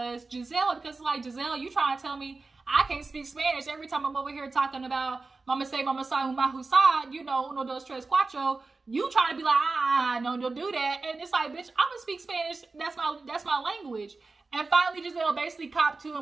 Gizelle, because like, Gizelle, you trying to tell me I can't speak Spanish every time I'm over here talking about mama say, mama say, husa, you know, uno, dos, tres, cuatro. You trying to be like, no, don't do that. And it's like, bitch, I'm gonna speak Spanish. That's my language. And finally, Gizelle basically copped to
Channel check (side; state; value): left; quieter; 3.8 dB